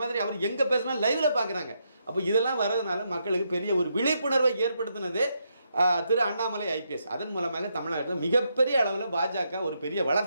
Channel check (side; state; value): both; inverted; correlation -0.80